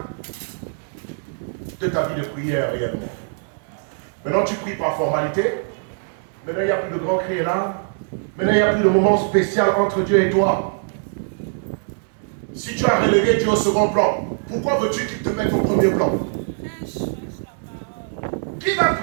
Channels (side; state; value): left; silent; digital silence